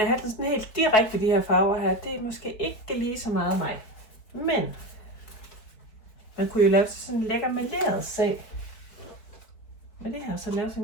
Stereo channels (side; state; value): right; late; 4.6 ms